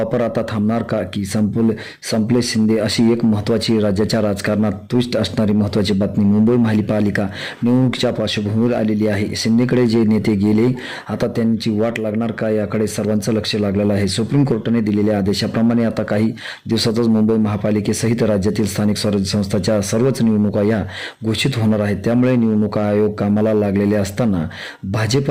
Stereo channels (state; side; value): identical; both; correlation 1.00